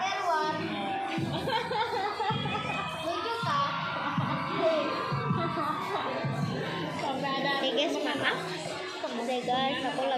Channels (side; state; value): both; identical; correlation 1.00